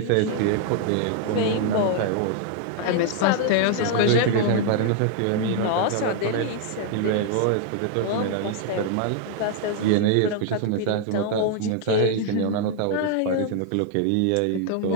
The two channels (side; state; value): both; different; correlation 0.00